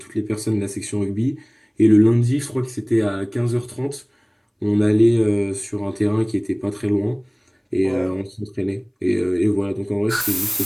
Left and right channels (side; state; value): both; identical; correlation 1.00